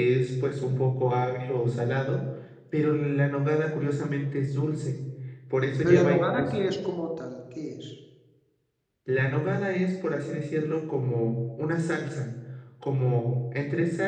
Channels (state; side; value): identical; both; correlation 1.00